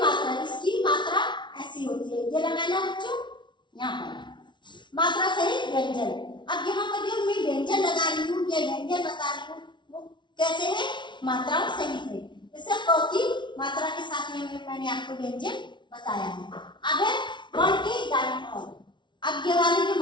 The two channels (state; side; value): late; right; 0.23 ms